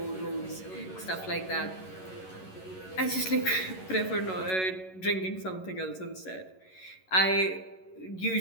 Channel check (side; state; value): right; late; 11 ms